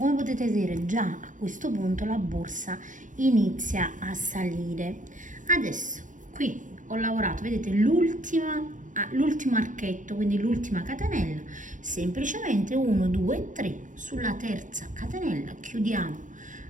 potete vedere, già a questo punto la borsa inizia a salire. Adesso qui ho lavorato, vedete, l'ultimo archetto, quindi l'ultima catenella, semplicemente 1 2 3 sulla terza catenella chiudiamo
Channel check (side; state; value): left; late; 0.37 ms